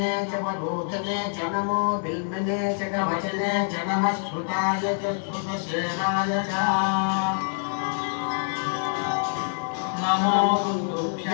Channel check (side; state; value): right; silent; digital silence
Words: च वरोधने च नमो बिल्मिने च कवचने च नमः श्रुताय च श्रुतसेनाय च नमो